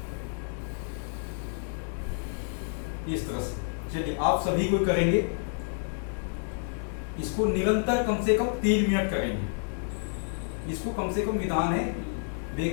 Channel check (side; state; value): right; silent; 58 dB below the other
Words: इस तरह से। चलिए आप सभी को करेंगे, इसको निरंतर कम से कम 3 मिनट करेंगे। इसको कम से कम विधान है,